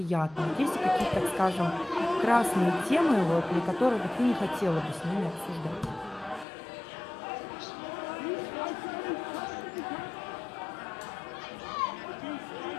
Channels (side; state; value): right; drops out; at 6.5 s